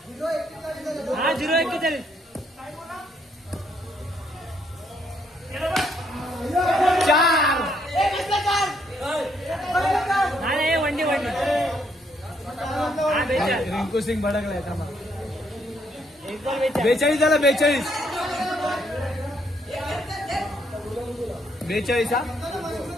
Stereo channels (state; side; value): normal; both; correlation 0.72